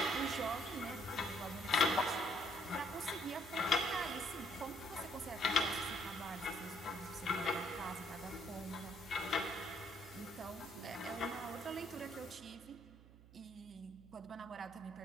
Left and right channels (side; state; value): right; noise; hum, 20 dB below the sound